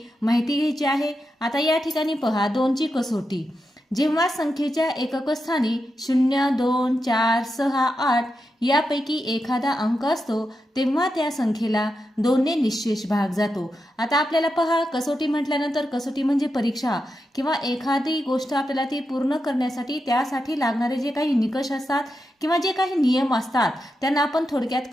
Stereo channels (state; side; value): normal; both; correlation 0.87